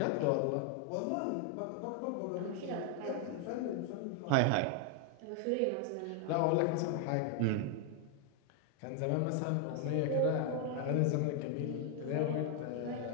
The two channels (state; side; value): different; both; correlation 0.00